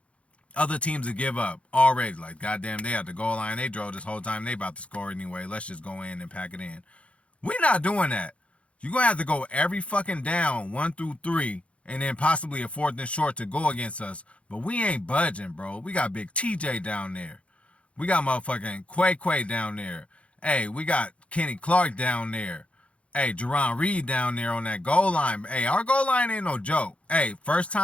other teams will give up already. Like, goddamn, they at the goal line. They drove this whole time. They about to score anyway. Let's just go in and pack it in. We're not doing that. You're gonna have to go every fucking down, 1 through 3, and then possibly a 4th and short to go against us. But we ain't budging, bro. We got Big TJ down there. We got motherfucking Quay down there. Hey, we got Kenny Clark down there. Hey, Jerron Reed down there on that goal line. Hey, our goal line ain't no joke. Hey, first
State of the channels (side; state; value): right; late; 0.062 ms